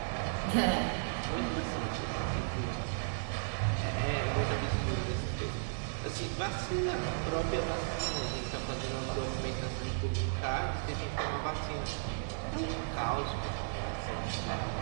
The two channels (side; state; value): left; silent; 55 dB below the other